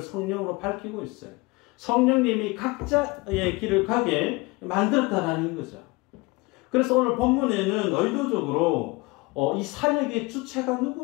밝히고 있어요. 성령님이 각자의 길을 가게 만들었다라는 거죠. 그래서 오늘 본문에는 의도적으로 이 사역의 주체가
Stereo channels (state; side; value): quieter; right; 24.5 dB